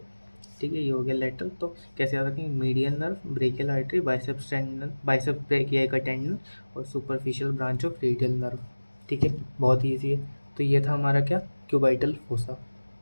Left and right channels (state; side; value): inverted; both; correlation -1.00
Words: ठीक है, ये हो गया लेटरल। तो कैसे याद रखेंगे, median nerve, brachial artery, biceps tendon, biceps brachii का टेंडन और superficial branch of radial nerve. ठीक है, बहुत ईजी है। तो ये था हमारा क्या, क्यूबाइटल फोसा।